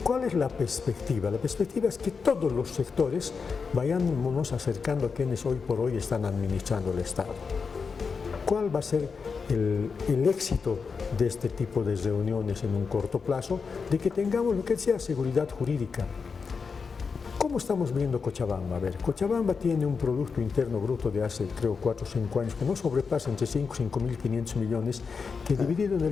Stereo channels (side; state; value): right; quieter; 5.3 dB